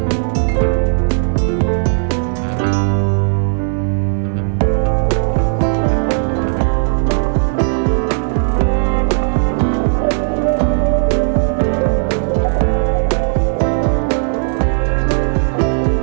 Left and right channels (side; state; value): left; silent; digital silence